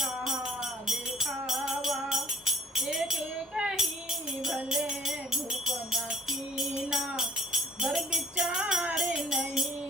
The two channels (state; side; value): normal; both; correlation 0.51